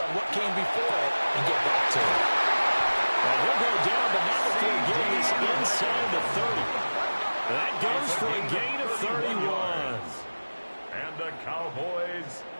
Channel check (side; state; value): both; inverted; correlation -1.00